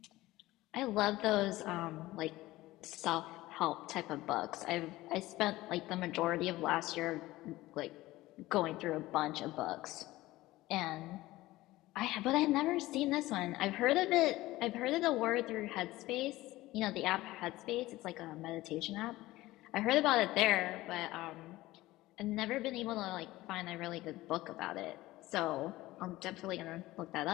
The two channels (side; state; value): right; quieter; 17.8 dB